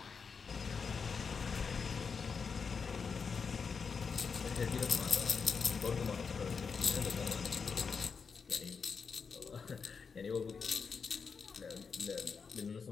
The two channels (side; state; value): right; quieter; 5.6 dB